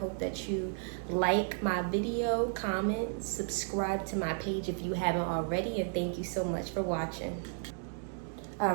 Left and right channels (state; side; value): silent; left; digital silence